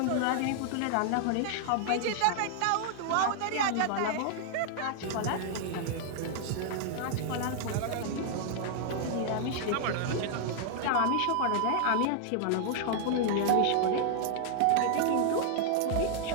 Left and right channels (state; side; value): different; both; correlation -0.01